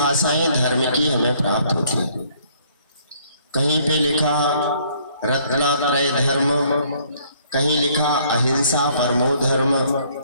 धर्म की हमें प्राप्त होती हैं। कहीं पे लिखा रत्नात्रय धर्म, कहीं लिखा अहिंसा परमो धर्म,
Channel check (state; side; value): inverted; both; correlation -0.63